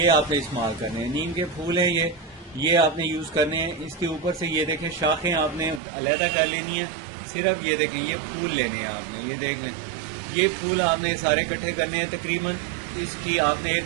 आपने इस्तेमाल करने हैं. नीम के फूल हैं ये आपने यूज़ करने हैं. इसके ऊपर से ये देखें शाखें आपने अलहदा कर लेनी है. सिर्फ ये देखें ये फूल लेने हैं आपने, ये देख लें ये फूल आपने सारे इकट्ठे करने हैं. तकरीबन इसकी आपने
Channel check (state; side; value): drops out; left; at 5.8 s